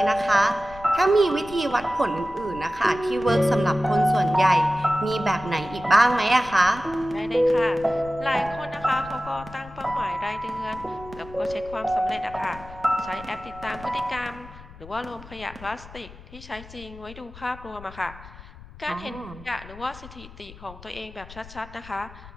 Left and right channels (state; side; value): noise; left; rumble, 17 dB below the sound